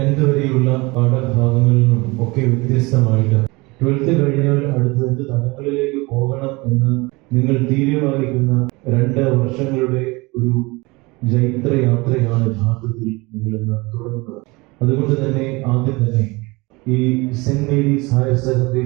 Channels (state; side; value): quieter; left; 24.4 dB